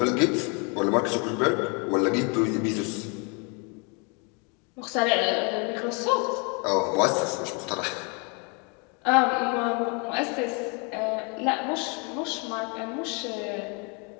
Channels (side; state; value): right; quieter; 33.4 dB